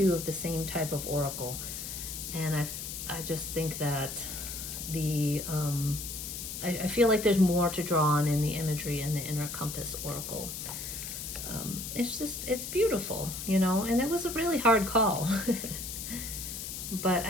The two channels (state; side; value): noise; left; hiss, 7 dB below the sound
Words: of the same type of oracle. And I just think that I feel like there's more to draw on in the imagery in the Inner Compass Oracle. It's beautiful, you know, and it was a really hard call. But